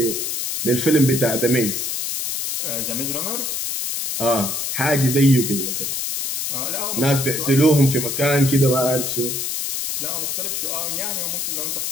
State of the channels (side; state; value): left; noise; hiss, 2 dB below the sound